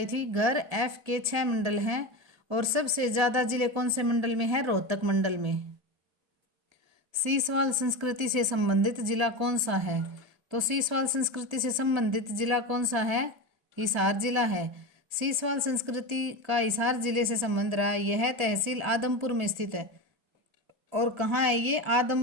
थी। घर एफ के 6 मंडल हैं। और सबसे ज्यादा जिले कौन से मंडल में है? रोहतक मंडल में। सीसवाल संस्कृति से संबंधित जिला कौन सा है? तो सीसवाल संस्कृति से संबंधित जिला कौन सा है? हिसार जिला है। सीसवाल संस्कृति का हिसार जिले से संबंध रहा। यह तहसील आदमपुर में स्थित है। और कहाँ है ये?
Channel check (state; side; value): late; left; 1.5 ms